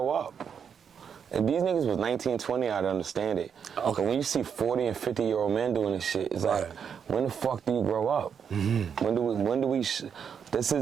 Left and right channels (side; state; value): left; quieter; 7.2 dB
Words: up? If these niggas was 19, 20, I'd understand it. Okay. But when you see 40 and 50-year-old men doing this shit, it's like, when the fuck do you grow up? When do we this is